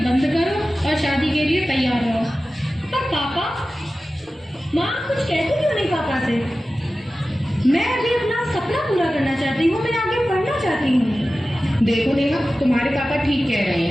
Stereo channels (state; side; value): normal; both; correlation 0.95